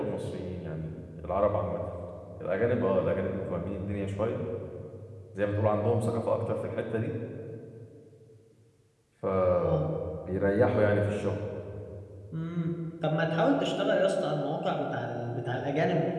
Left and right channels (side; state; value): both; identical; correlation 1.00